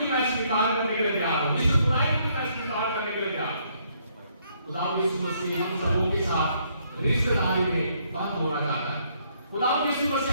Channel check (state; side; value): inverted; both; correlation -0.70